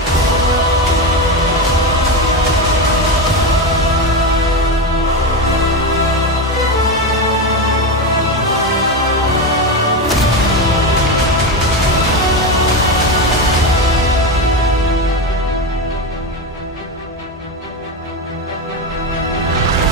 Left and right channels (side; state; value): both; normal; correlation 0.15